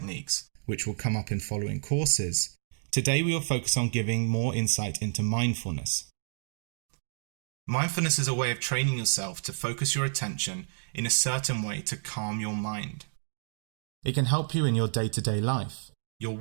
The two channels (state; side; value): silent; left; digital silence